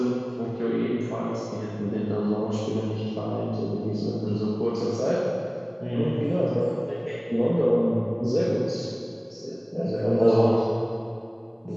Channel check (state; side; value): identical; both; correlation 1.00